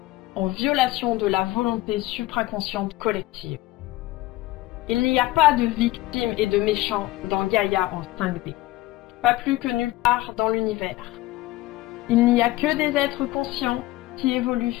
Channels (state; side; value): quieter; right; 17.9 dB